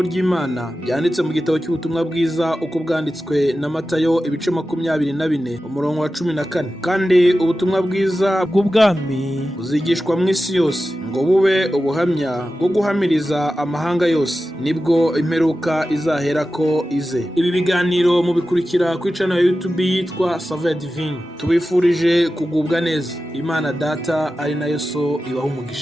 ry'Imana byanditse mu gitabo cy'ubutumwa bwiza uko bwanditswe na Matayo ibice 24 umurongo wa 14. Kandi ubutumwa bwiza bw'ubwami buzigishwa mu isi yose ngo bube ubuhamya bwo guhamiriza amahanga yose, nibwo imperuka izahera ko ize. Ibi biganiro mubikurikira ku channel ya YouTube yitwa Saveur Divine. Tubifurije kugubwa neza. Imana Data ari nayo So ibaha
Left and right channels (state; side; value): normal; both; correlation 0.93